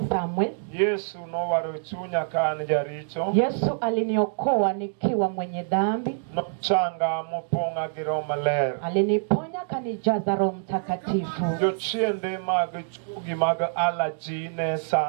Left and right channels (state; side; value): silent; left; digital silence